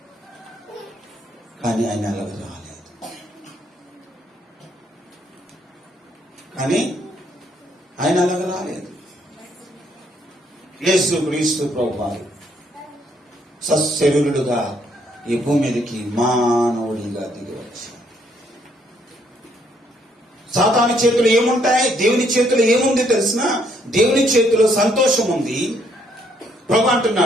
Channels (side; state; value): both; normal; correlation 0.70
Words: కానీ ఆయన అలాగ రాలేదు. యేసు క్రీస్తు ప్రభువారు సశరీరుడుగా ఈ భూమి మీదకి మానవుడిగా దిగి వచ్చాడు. సాతాను చేతులు ఏముంటాయి? దేవుని చేతులు ఏముంది తెలిసిన? దేవుని చేతిలో సంతోషం ఉంది. ప్రభు